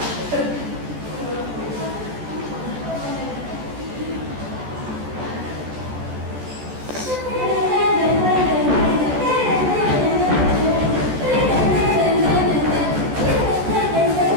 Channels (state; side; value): late; left; 14 ms